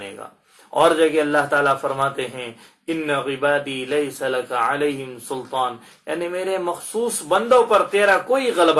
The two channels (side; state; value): both; identical; correlation 1.00